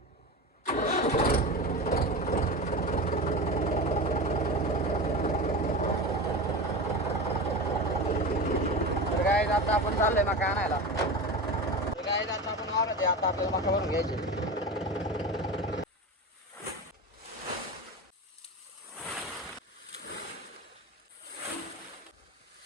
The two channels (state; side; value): normal; both; correlation 0.26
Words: तर गाईज आता आपण चाललोय मका आणायला. तर गाईज आता आपण वावरात आता आपल्याला मका भरून घ्यायचे.